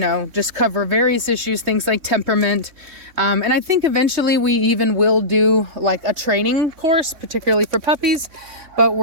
just cover various issues, things like temperament. And I think eventually we even will do like a training course, particularly for puppies. But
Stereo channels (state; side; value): late; left; 3.6 ms